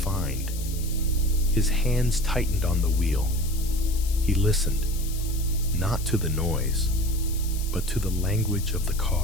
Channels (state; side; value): noise; left; hiss, 13 dB below the sound